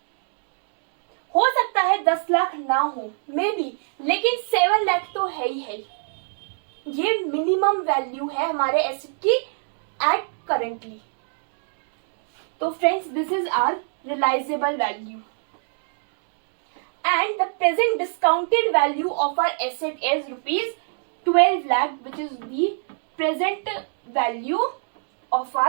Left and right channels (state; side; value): silent; left; digital silence